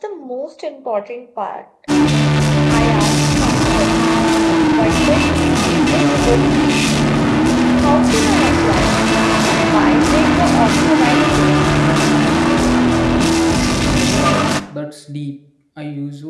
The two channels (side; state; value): both; identical; correlation 1.00